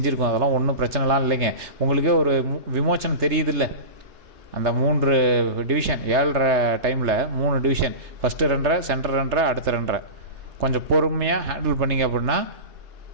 அதெல்லாம் ஒன்றும் பிரச்சனைலாம் இல்லைங்க. உங்களுக்கே ஒரு விமோச்சனம் தெரியுது இல்லை, அந்த 3 டிவிஷன் 7:30 டைமில் 3 டிவிஷன், ஃபஸ்ட்டு 2:30, சென்டர் 2:30, அடுத்த 2:30 கொஞ்சம் பொறுமையாக ஹேண்டில் பண்ணிங்க அப்படின்னா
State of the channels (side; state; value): left; late; 3.3 ms